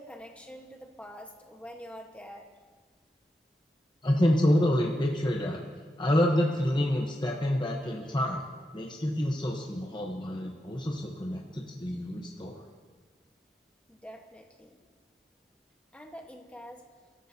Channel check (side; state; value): both; normal; correlation 0.87